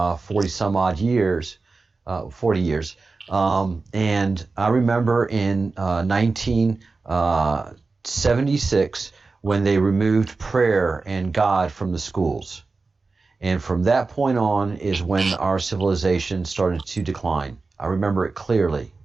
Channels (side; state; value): left; quieter; 3.9 dB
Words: 40 some odd years, 40 years. And I remember in 1976 when they removed prayer and God from the schools. And from that point on is when our civilization started to decline. I remember it clearly.